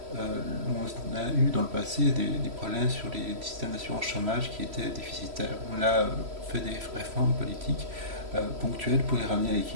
On a eu dans le passé des problèmes sur les systèmes d'assurance chômage qui étaient déficitaires. On a fait des réformes politiques ponctuelles pour les ramener à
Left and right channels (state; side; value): late; left; 3.1 ms